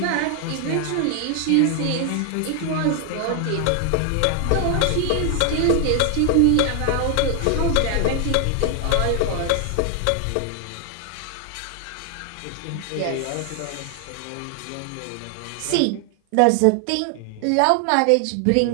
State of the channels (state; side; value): different; both; correlation 0.00